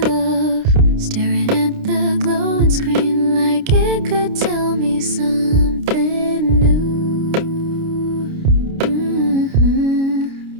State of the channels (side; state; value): left; late; 29 ms